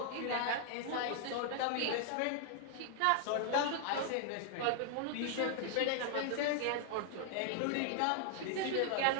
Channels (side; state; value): both; different; correlation 0.00